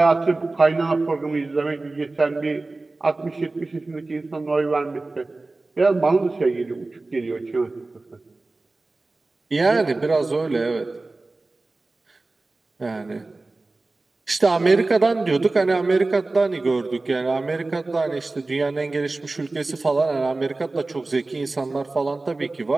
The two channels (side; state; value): left; quieter; 3.3 dB